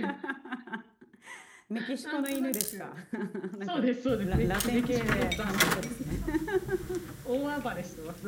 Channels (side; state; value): both; identical; correlation 1.00